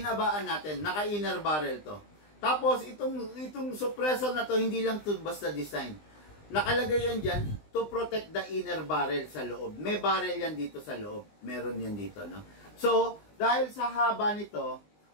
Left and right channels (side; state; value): right; late; 20 ms